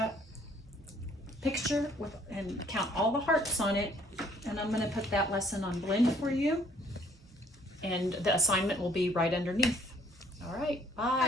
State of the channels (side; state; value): both; normal; correlation 0.61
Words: picture and count all the hearts on it. And I'm going to put that lesson on Blend for you. And the assignment will be right underneath. All right.